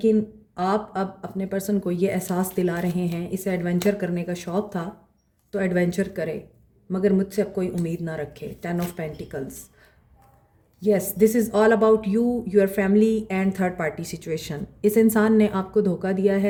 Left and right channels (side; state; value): both; identical; correlation 1.00